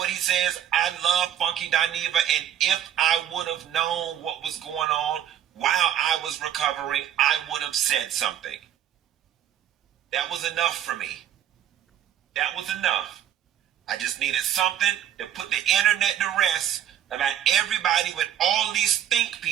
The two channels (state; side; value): quieter; left; 10.5 dB